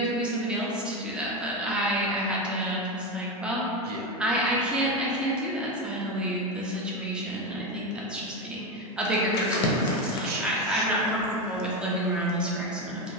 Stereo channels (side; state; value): both; normal; correlation 0.15